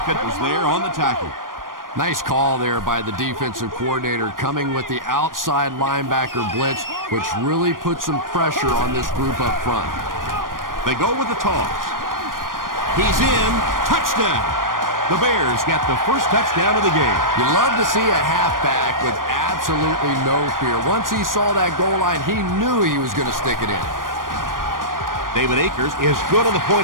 was there on the tackle. Nice call there by the defensive coordinator, coming with the outside linebacker blitz, which really puts some pressure on this group up front. They go with the toss. He's in. Touchdown. The Bears get the first touchdown of the game. You love to see a halfback with absolutely no fear. Once he saw that goal line, he knew he was going to stick it in. David Akers is good on the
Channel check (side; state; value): left; late; 0.90 ms